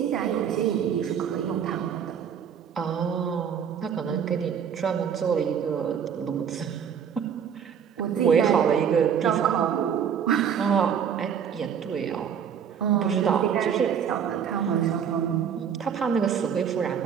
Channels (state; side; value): quieter; left; 7.9 dB